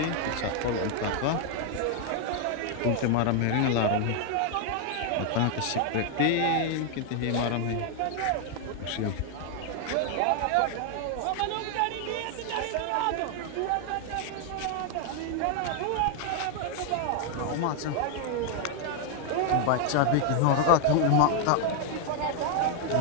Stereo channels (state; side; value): different; both; correlation 0.00